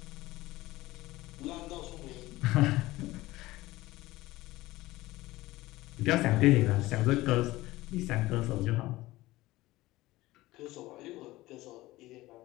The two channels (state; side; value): quieter; right; 18.2 dB